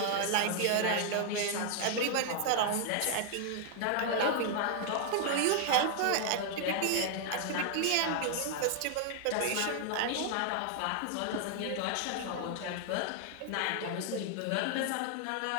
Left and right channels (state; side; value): different; both; correlation 0.00